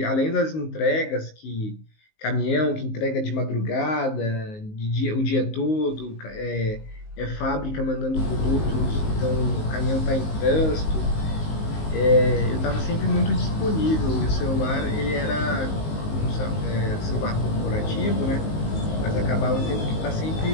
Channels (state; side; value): late; right; 19 ms